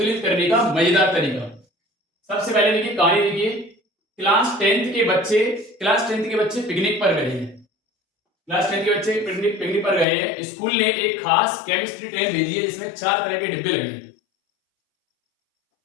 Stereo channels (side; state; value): right; drops out; at 10.1 s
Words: करने का मजेदार तरीका। सबसे पहले देखिए, कहानी देखिए। क्लास 10th के बच्चे पिकनिक पर गए हैं। क्लास 10th के बच्चे पिकनिक पर गए हैं। स्कूल ने एक खास केमिस्ट्री ट्रेन भेजी है जिसमें 4 तरह के डिब्बे लगे हैं।